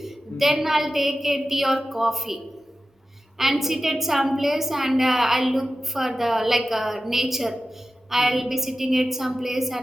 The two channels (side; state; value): both; normal; correlation 0.93